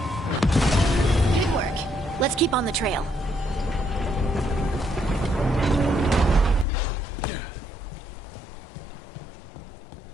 Good work. Let's keep on the trail.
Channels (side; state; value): right; drops out; at 6.7 s